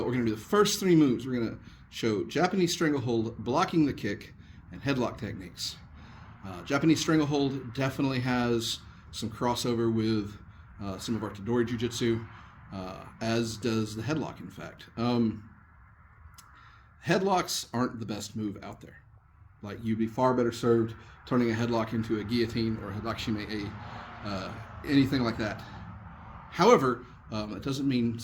We're going to do the first three moves. We're going to show Japanese Stranglehold, blocking the kick, and headlock techniques. Japanese Stranglehold definitely has some crossover with some of our Tadori Jiu-Jitsu, as does the headlock, in fact. Headlocks aren't the best move out there. Like, you'd be far better served turning a headlock into a guillotine or a headlock anything like that. However, it doesn't mean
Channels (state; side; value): identical; both; correlation 1.00